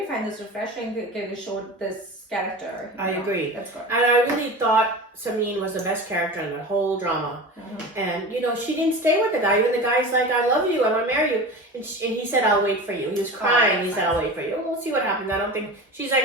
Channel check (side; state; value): both; normal; correlation 0.31